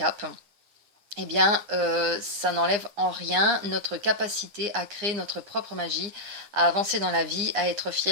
eh bien, ça n'enlève en rien notre capacité à créer notre propre magie, à avancer dans la vie, à être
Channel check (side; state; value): left; late; 9.8 ms